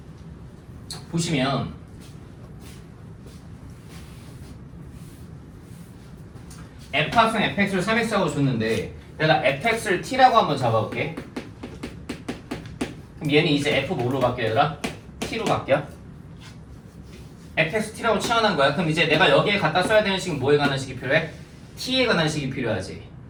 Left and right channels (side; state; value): both; identical; correlation 1.00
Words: 보시면 f 합성 fx를 3x라고 줬는데 내가 fx를 t라고 한번 잡아볼게. 그럼 얘는 이제 f 뭐로 바뀌어 얘들아? t로 바뀌어. fx t라고 치환한 거야. 그럼 이제 내가 여기에 갖다 써야 되는 식은 뭐에 관한 식이 필요해? t에 관한 식이 필요하지.